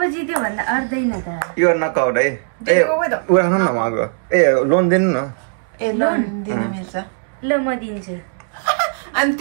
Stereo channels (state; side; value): silent; left; 67 dB below the other